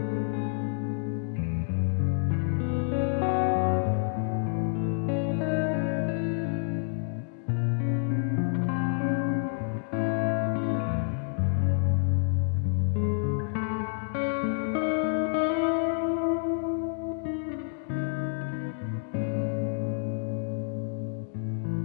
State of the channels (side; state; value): right; silent; 59 dB below the other